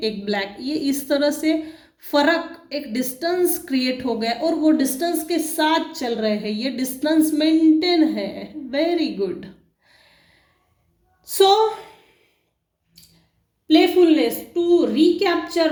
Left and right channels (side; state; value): both; identical; correlation 1.00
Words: एक ब्लैक, ये इस तरह से फर्क, एक डिस्टेंस क्रिएट हो गया और वो डिस्टेंस के साथ चल रहे हैं, ये डिस्टेंस मेंटेन है। Very good. So playfulness to recapture